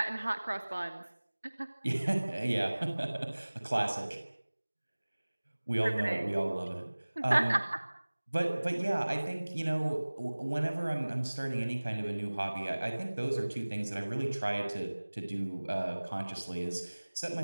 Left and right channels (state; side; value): inverted; both; correlation -1.00